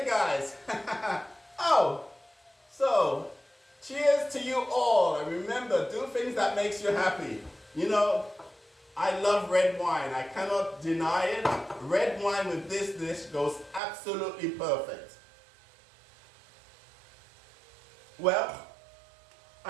guys, oh, so cheers to you all, and remember, do things that makes you happy. You know, I love red wine, I cannot deny it. Red wine with this dish goes absolutely perfect. Well,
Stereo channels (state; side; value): drops out; left; at 13.8 s